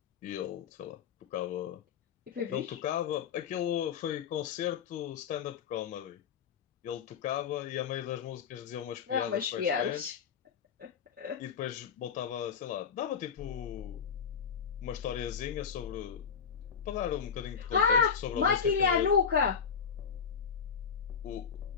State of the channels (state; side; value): quieter; right; 6.9 dB